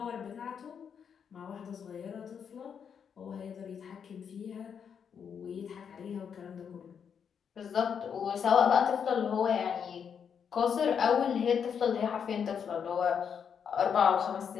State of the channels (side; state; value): right; quieter; 7.3 dB